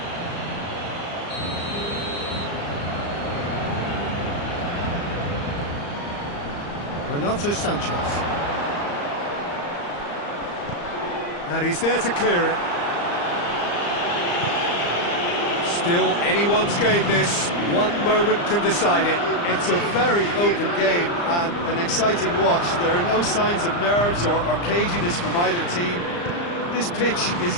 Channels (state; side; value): late; right; 34 ms